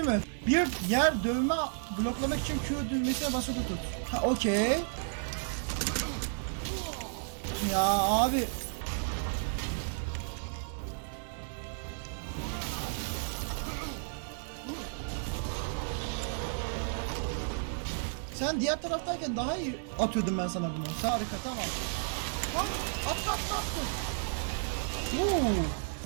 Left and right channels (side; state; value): left; silent; digital silence